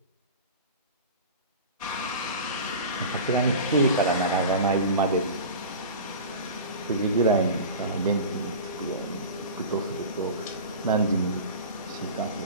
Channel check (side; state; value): both; inverted; correlation -0.33